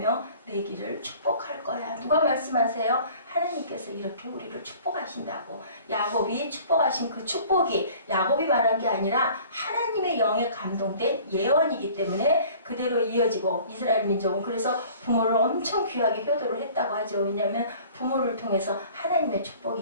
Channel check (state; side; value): inverted; both; correlation -0.48